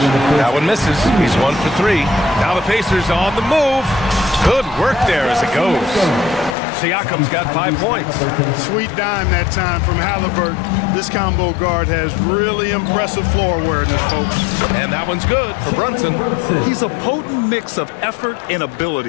That one misses. He's 1 for 3. Now the Pacers on the move. Good work there as it goes. Siakam's got 5 points. Sweet dime that time from Halliburton. This combo guard has really impressive floor awareness, folks. And that one's good for Brunson. He's a potent mix of effort and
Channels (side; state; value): right; drops out; at 6.6 s